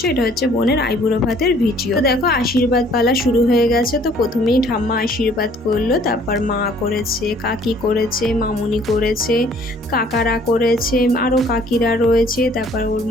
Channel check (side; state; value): both; normal; correlation 0.58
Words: এটা হচ্ছে বোনের আইবুড়ো ভাতের ভিডিও। তো দেখো আশীর্বাদ পালা শুরু হয়ে গেছে। তো প্রথমেই ঠাম্মা আশীর্বাদ করলো, তারপর মা করেছে, কাকি করেছে, মামুনি করেছে, কাকারা করেছে, আরও কাকিরা রয়েছে, তারপর ওর